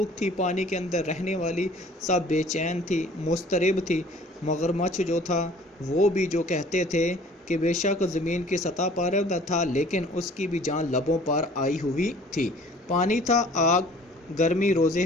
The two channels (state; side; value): normal; both; correlation 0.51